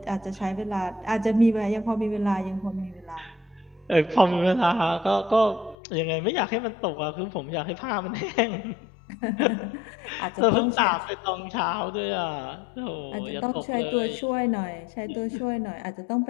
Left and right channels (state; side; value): drops out; right; at 5.8 s